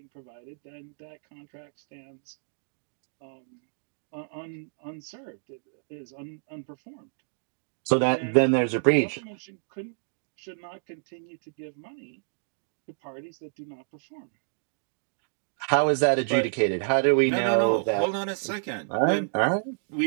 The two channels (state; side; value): silent; left; digital silence